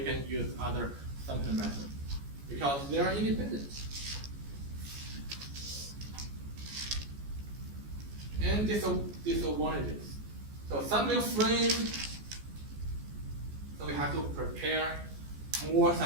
use other sampling methods, because they are independent. And disadvantages. So sampling frame, so we have to prepare more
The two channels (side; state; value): left; late; 14 ms